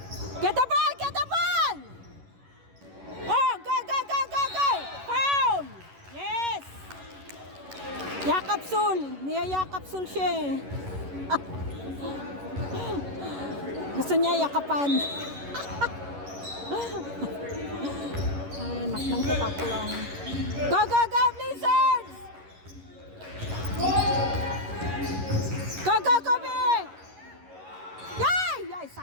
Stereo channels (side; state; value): left; late; 11 ms